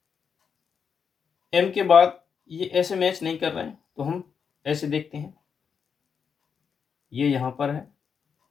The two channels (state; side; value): quieter; right; 6.5 dB